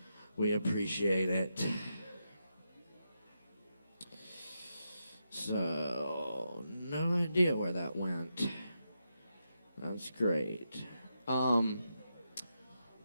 We appreciate it. So, no idea where that went. That's great.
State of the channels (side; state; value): both; inverted; correlation -0.86